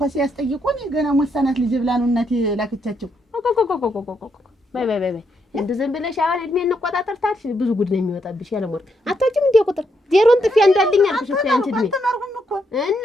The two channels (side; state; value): both; normal; correlation 0.78